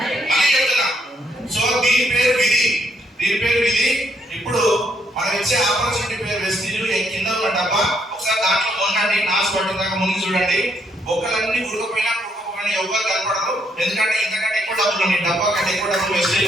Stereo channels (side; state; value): both; normal; correlation 0.73